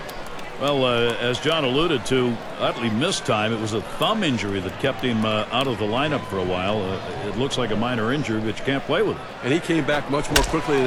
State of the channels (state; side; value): identical; both; correlation 1.00